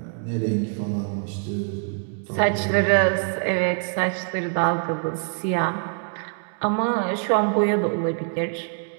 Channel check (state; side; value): silent; left; 55 dB below the other